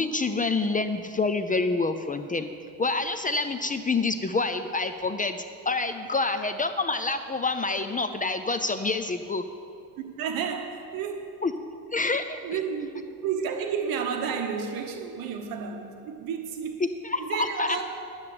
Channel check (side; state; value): both; normal; correlation 0.16